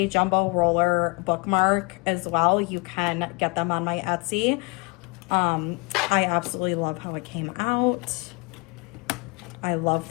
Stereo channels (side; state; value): right; quieter; 29.3 dB